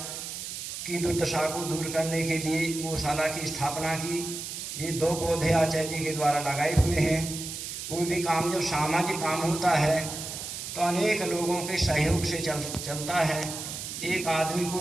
की दुर्दशा को दूर करने के लिए गौशाला की स्थापना की। ये 2 पौधे आचार्य जी के द्वारा लगाए हुए हैं। कोई भी काम जब सामाजिक काम होता है तो अनेक लोगों के सहयोग से चलता है। एक आदमी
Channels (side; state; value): right; noise; hiss, 7 dB below the sound